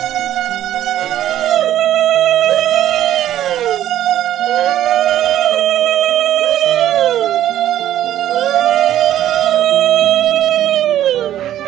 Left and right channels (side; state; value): left; quieter; 12.2 dB